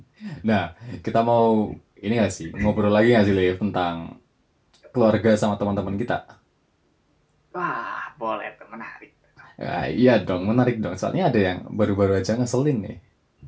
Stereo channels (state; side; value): identical; both; correlation 1.00